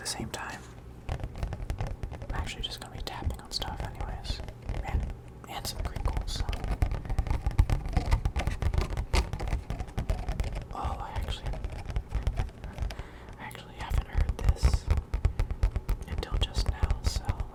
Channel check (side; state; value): both; identical; correlation 1.00